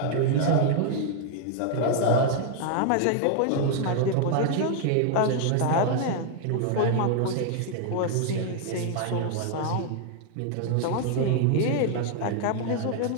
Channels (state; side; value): different; both; correlation 0.00